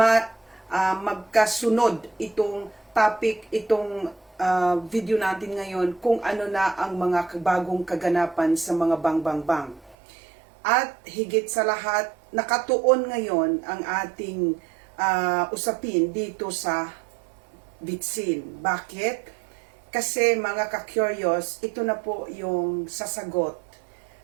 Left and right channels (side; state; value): left; drops out; at 10.0 s